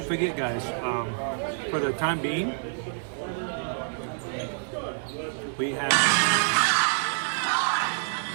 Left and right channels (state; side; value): silent; left; digital silence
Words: forget, guys, for the time being, we have